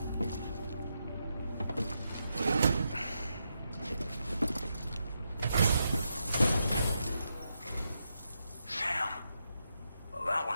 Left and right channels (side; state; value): both; inverted; correlation -0.84